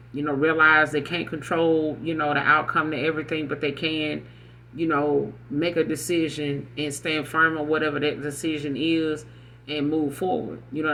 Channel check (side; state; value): both; identical; correlation 1.00